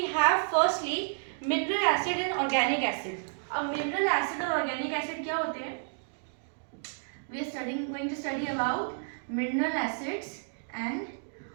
have firstly mineral acid and organic acid. अब मिनरल एसिड और ऑर्गेनिक एसिड क्या होते हैं? We are going to study about mineral acids and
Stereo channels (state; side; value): silent; left; digital silence